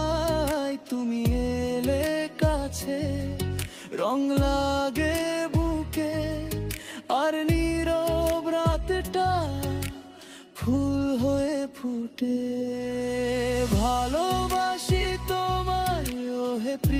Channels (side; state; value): both; identical; correlation 1.00